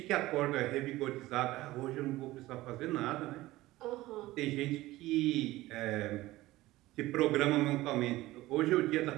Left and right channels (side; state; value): left; quieter; 17.6 dB